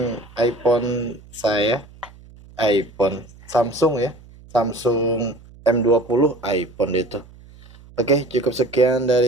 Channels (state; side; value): noise; right; hum, 22 dB below the sound